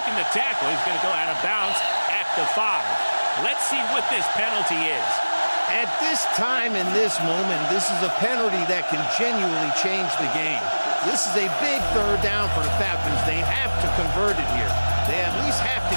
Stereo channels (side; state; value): both; inverted; correlation -1.00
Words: the tackle. He's going to go out of bounds at the 5. Let's see what this penalty is. At this time, in this moment, this is a penalty that can genuinely change the game. This is a big 3rd down for the Falcons. They have to convert it here. They at least have to